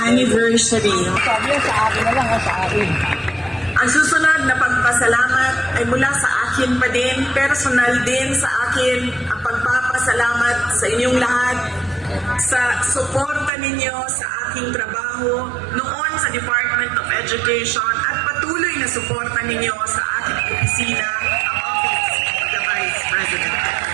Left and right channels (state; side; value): drops out; left; at 13.5 s